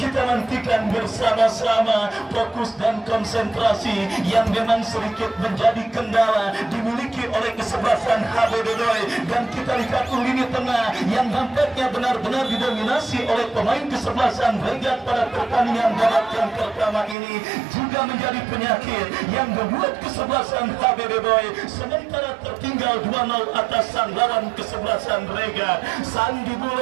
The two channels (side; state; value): left; drops out; at 17.2 s